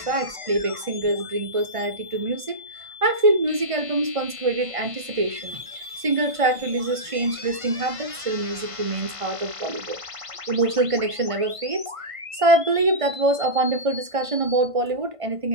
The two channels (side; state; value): left; late; 1.5 ms